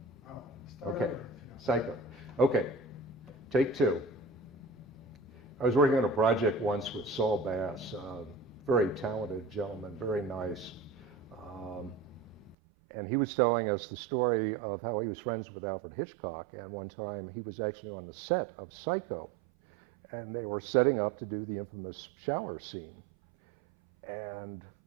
Oh, start Okay, over, if you don't- Psycho. Okay, take two. I was working on a project once with Saul Bass, very talented gentleman, very nice. And he was telling us the story of how he was friends with Alfred Hitchcock. And one time he was actually on the set of Psycho. And they were setting up to do the infamous shower scene. And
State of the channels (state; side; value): drops out; left; at 12.6 s